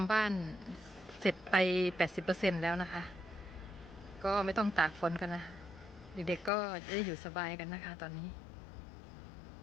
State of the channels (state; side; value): drops out; right; at 6.5 s